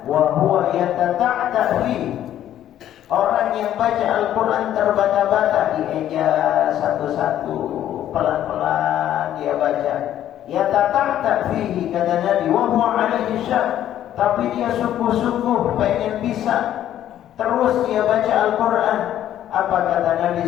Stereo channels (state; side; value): quieter; right; 11.6 dB